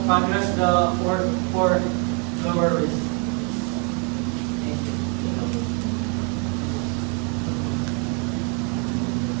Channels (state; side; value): quieter; left; 36.0 dB